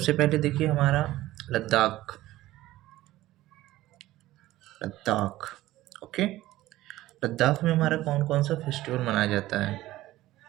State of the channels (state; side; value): quieter; left; 16.1 dB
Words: पहले देखिए हमारा लद्दाख। लद्दाख, ओके। लद्दाख में हमारा कौन कौन सा फेस्टिवल मनाया जाता है?